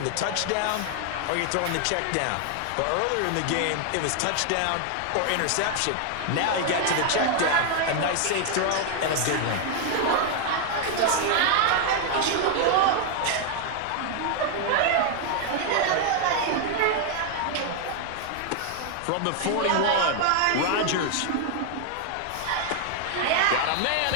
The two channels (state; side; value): different; both; correlation 0.00